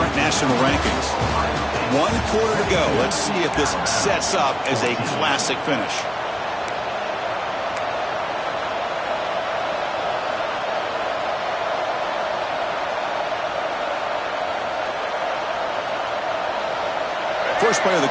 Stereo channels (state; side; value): identical; both; correlation 1.00